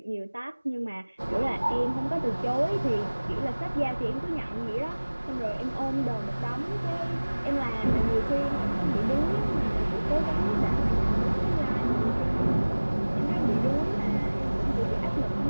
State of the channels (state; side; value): inverted; both; correlation -1.00